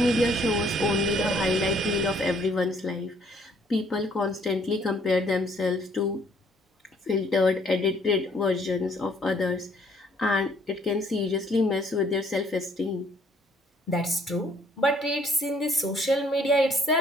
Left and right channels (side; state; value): both; normal; correlation 0.63